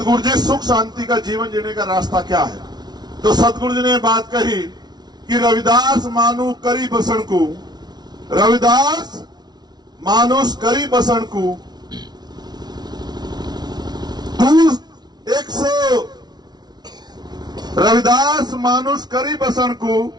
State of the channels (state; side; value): late; left; 0.19 ms